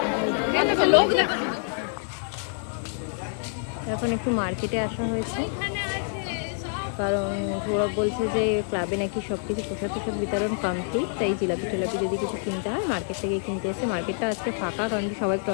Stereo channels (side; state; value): right; silent; digital silence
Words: এখন একটু মার্কেটে আসা হয়েছে, কারণ গৌরব বলছে যে ক্লাবে নাকি সব কিছু প্রসাদ প্রসাদ বিতরণ কমপ্লিট, তাই জিলাপি টিলাপি যদি কিছু কিনতে হয় মার্কেট থেকে কিনতে এসে। মার্কেটটা আজকে ফাঁকা, কারণ কি সবাই